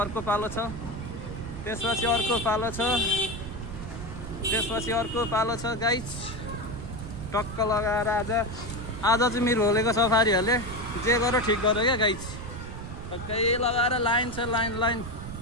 अर्को पालो छ, त्यसपछि अर्को पालो छ, त्यसपछि अर्को पालो छ गाइस। टक्क लगाएर आज चाहिँ मृगौलेको सफारीहरूले जे गर्यो ठिक गर्यो क्या गाइस। टक्कै लगाएर लाइन छ, लाइन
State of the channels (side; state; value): right; noise; rumble, 10 dB below the sound